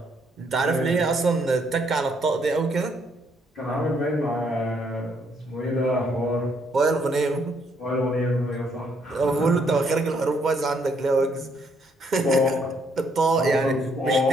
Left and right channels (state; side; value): normal; both; correlation 0.71